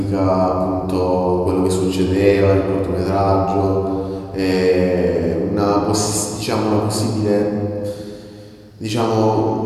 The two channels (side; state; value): both; identical; correlation 1.00